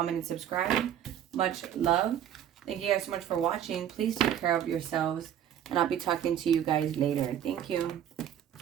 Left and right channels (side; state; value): left; quieter; 10.2 dB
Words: and subscribe. Much love. Thank you guys so much for watching. Please take care of yourselves. And I'll be talking to you guys later. Thank you.